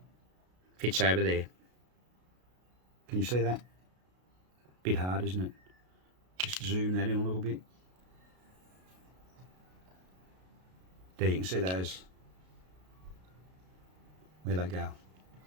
Fits over there. Can you see that? Bit hard, isn't it? Just zoom that in a little bit. There you can see those, where they go.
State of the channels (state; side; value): late; left; 33 ms